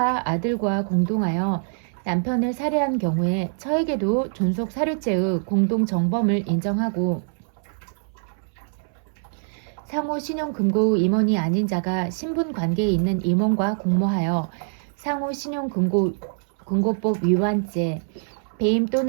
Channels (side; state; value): left; silent; 63 dB below the other